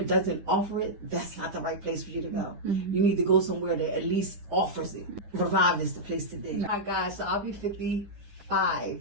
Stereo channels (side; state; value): left; late; 9.8 ms